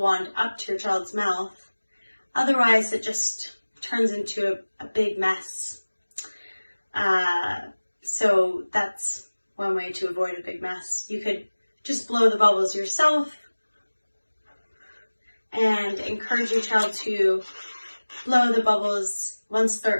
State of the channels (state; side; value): inverted; both; correlation -1.00